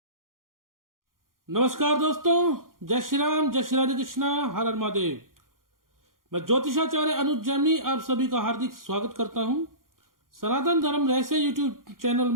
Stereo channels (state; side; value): late; left; 0.91 ms